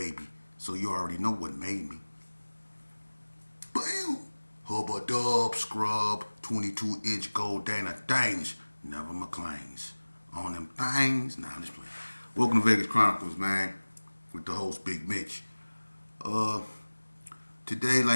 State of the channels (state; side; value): inverted; both; correlation -1.00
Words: So you already know what made me. Bam! Hubba dub, scrub, 22-inch gold Dana things. Never McLean's. On them things. Nah, I'm just playing. Welcome to Vegas Chronicles, man. With the host, Big Mitch. Today,